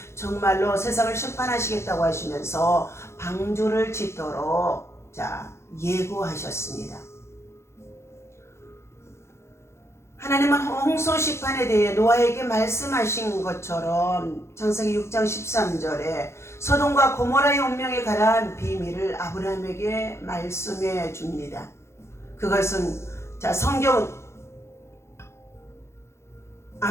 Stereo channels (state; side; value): late; right; 0.13 ms